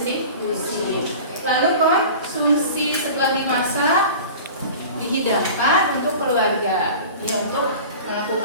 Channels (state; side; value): inverted; both; correlation -0.38